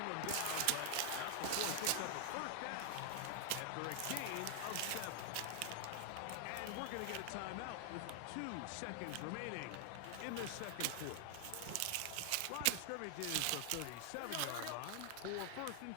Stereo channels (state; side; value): different; both; correlation 0.00